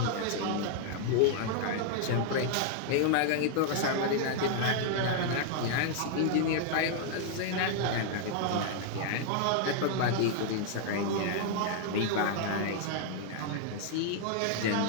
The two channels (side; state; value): both; different; correlation 0.00